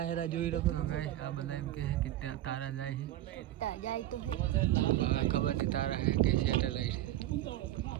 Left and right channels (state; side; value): quieter; left; 13.9 dB